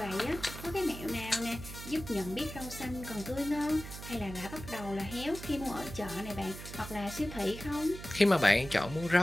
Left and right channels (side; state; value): right; noise; hum, 11 dB below the sound